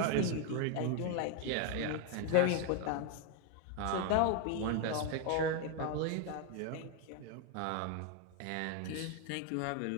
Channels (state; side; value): different; both; correlation 0.01